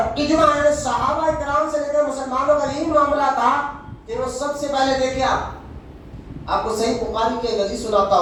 اجماع ہے صحابہ کرام سے لے کر مسلمانوں کا یہی معاملہ تھا کہ وہ سب سے پہلے دیکھیں، آپ کو صحیح بخاری کے حدیث سناتا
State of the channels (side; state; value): both; identical; correlation 1.00